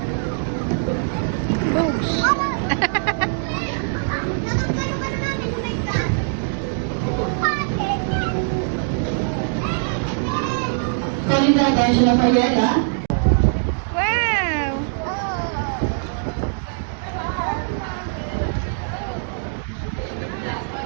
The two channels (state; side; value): silent; left; digital silence